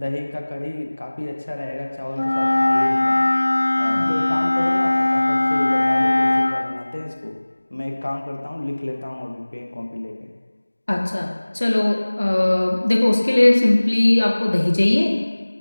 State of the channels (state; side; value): inverted; both; correlation -1.00